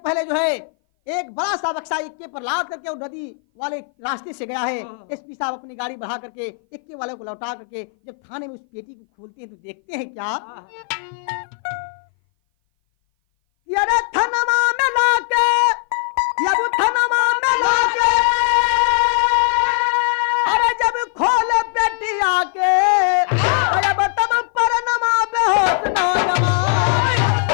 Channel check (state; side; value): silent; right; 58 dB below the other